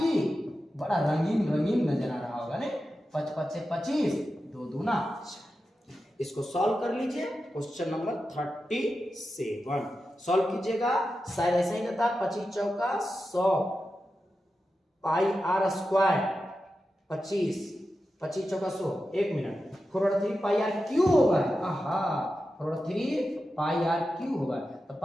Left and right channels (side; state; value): both; normal; correlation 0.91